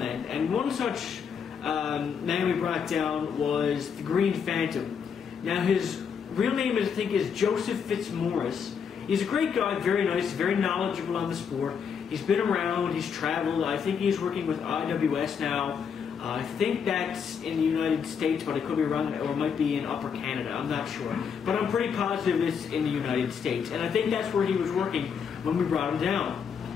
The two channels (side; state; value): right; quieter; 6.8 dB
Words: and one such man we brought down was the Green Phantom. Now his real name, I think, is Joseph Fitzmaurice. He's a great guy, very nice, very knowledgeable on the sport. He's been around, he's traveled. I think he's working with IWS now. I think that's in the United States, but I could be wrong, or it might be in Upper Canada, I'm not sure. But I'm pretty positive it's in the United States, and I think that's where he was working when we brought him down.